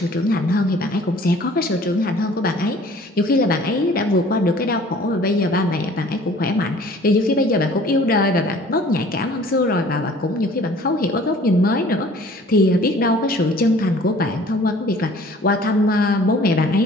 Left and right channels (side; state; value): both; normal; correlation 0.51